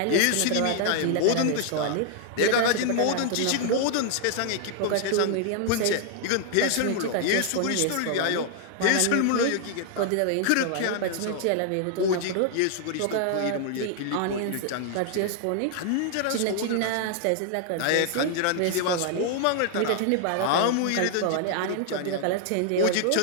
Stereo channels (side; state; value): both; different; correlation 0.00